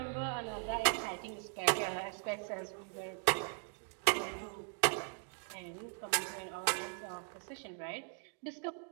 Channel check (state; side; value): silent; left; 52 dB below the other